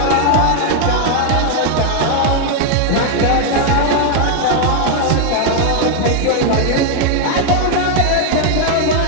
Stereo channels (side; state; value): both; different; correlation 0.00